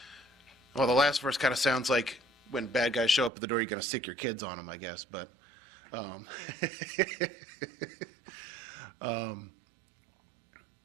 Well, the last verse kind of sounds like when bad guys show up at the door, you're going to sick your kids on them, I guess. But there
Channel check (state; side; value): drops out; left; at 3.3 s